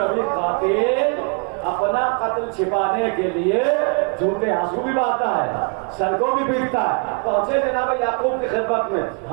اپنا قتل چھپانے کے لیے جھوٹے آنسو بھی بہاتا ہے، سر کو بھی پیٹتا ہے. پہنچے جناب یعقوب کی خدمت میں،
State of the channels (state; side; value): quieter; left; 36.8 dB